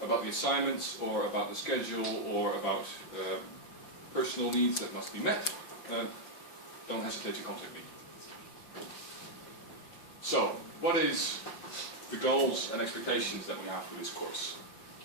the assignments, or about the schedule, or about personal needs that must be met, don't hesitate to contact me. So, what is the goals and expectations that we have for this course?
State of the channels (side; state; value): right; late; 5.8 ms